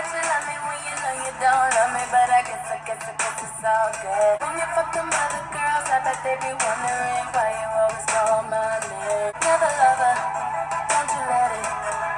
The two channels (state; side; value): identical; both; correlation 1.00